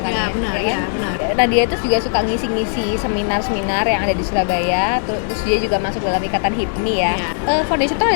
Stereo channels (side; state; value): right; silent; digital silence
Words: Iya, benar, kan? iya, benar. Nah dia itu juga suka ngisi-ngisi seminar-seminar yang ada di Surabaya, terus dia juga masuk dalam ikatan HIPMI ya. Iya. Foundation itu